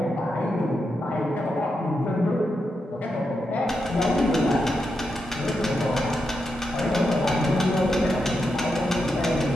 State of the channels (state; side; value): normal; both; correlation 0.85